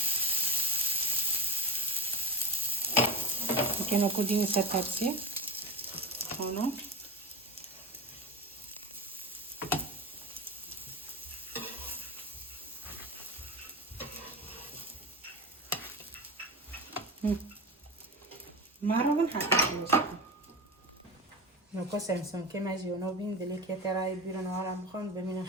كانوا كودين ستابسي هنا مرة حتى خلصت نوكو سامسون كما جيونو بين دليك يتراي بيرو نهار مخون بمين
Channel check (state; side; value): normal; both; correlation 0.22